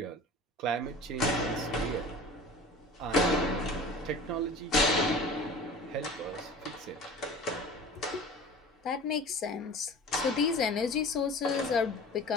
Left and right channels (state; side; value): normal; both; correlation 0.39